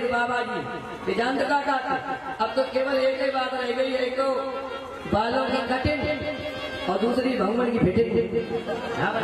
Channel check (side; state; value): both; identical; correlation 1.00